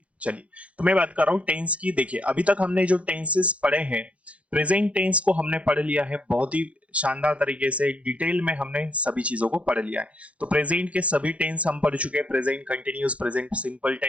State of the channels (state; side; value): late; left; 0.063 ms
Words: चलिए, तो मैं बात कर रहा हूँ टेंस की। देखिए, अभी तक हमने जो टेंसेस पढ़े हैं, प्रेजेंट टेंस को हमने पढ़ लिया है बहुत ही शानदार तरीके से, डिटेल में हमने सभी चीजों को पढ़ लिया है। तो प्रेजेंट के सभी टेंस हम पढ़ चुके हैं। Present continuous, present simple